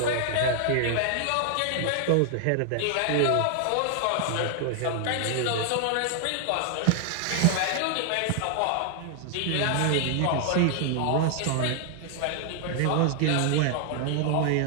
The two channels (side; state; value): both; different; correlation 0.00